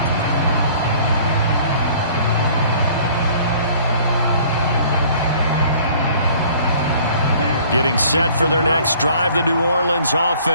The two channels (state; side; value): inverted; both; correlation -0.53